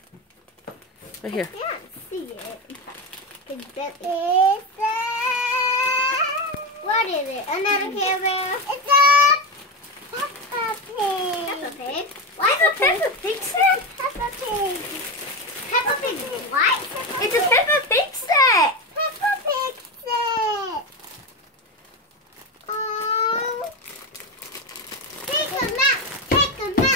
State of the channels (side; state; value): both; normal; correlation 0.16